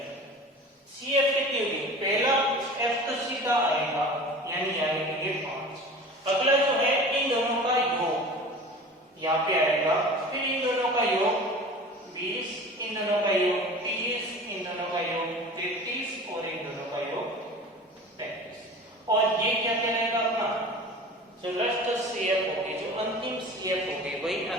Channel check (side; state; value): both; normal; correlation 0.39